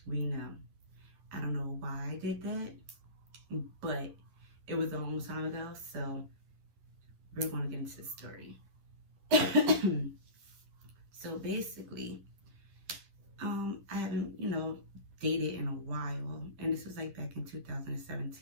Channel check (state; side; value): late; left; 11 ms